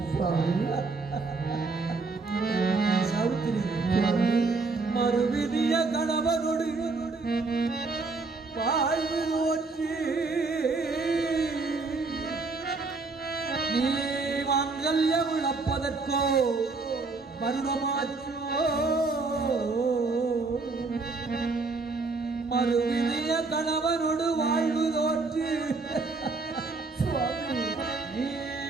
சாவித்திரி மறுவிதிய கணவனோடு வாழ்வு நோற்றி நீ மாங்கல்யம் இழப்பதற்கோ வருடமாச்சோ மறுவிதிய கணவனோடு வாழ்வு நோற்றி நீ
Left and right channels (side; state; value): left; quieter; 3.9 dB